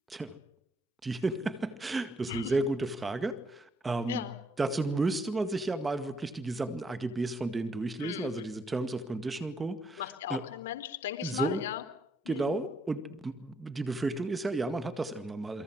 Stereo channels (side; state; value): both; normal; correlation 0.73